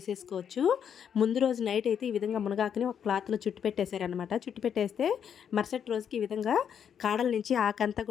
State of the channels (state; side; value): quieter; right; 8.2 dB